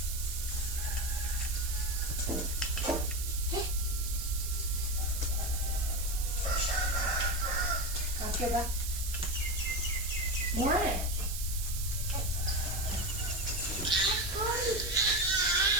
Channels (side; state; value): right; noise; hiss, 6 dB below the sound